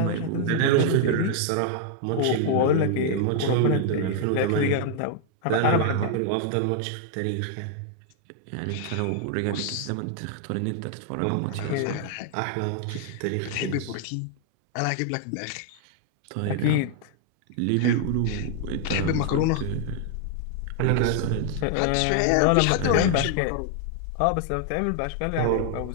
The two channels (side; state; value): both; different; correlation 0.00